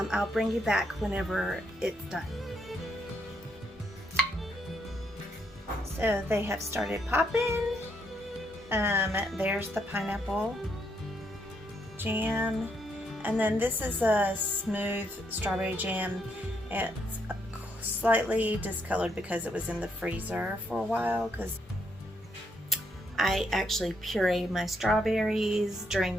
bring you back whenever it's done. So they have started popping. There's the pineapple jam, and then this is a smooth strawberry jam. It's slightly discolored because it was in the freezer for a while, because I actually pureed my strawberries during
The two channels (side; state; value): both; normal; correlation 0.76